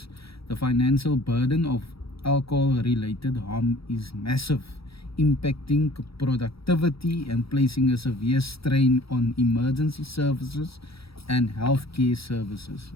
the financial burden of alcohol-related harm is massive, impacting productivity and placing a severe strain on emergency services and healthcare services.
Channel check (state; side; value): late; right; 0.76 ms